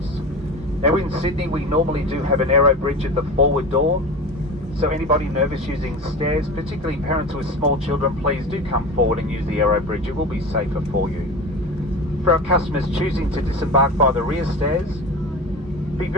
Now in Sydney, we normally do have an aero bridge at the forward door, so anybody nervous using stairs, particularly parents with small children, please do come forward and use the aero bridge. It will be safer for you. For our customers choosing to disembark by the rear stairs, be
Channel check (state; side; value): normal; both; correlation 0.30